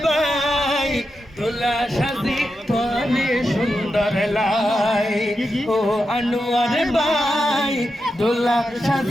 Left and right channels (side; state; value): both; normal; correlation 0.88